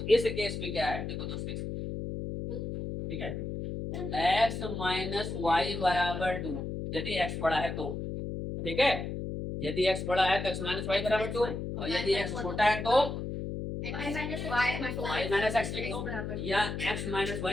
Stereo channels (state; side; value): noise; left; hum, 5 dB below the sound